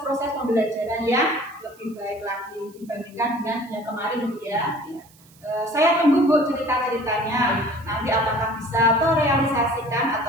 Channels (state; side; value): noise; right; hiss, 27 dB below the sound